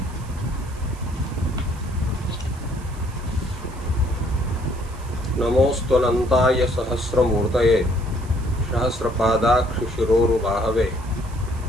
नमोस्तुनन्ताय सहस्रमूर्तये सहस्रपादाक्षिशिरोरुबाहवे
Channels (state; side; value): noise; right; hiss, 23 dB below the sound